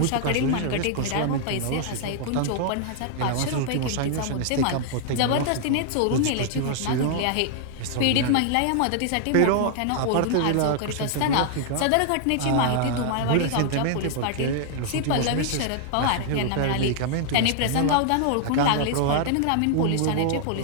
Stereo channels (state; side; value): different; both; correlation -0.01